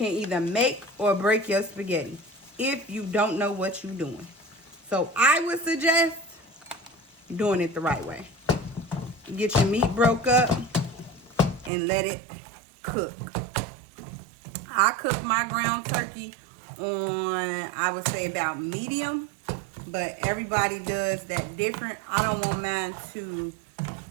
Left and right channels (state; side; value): drops out; left; at 11.7 s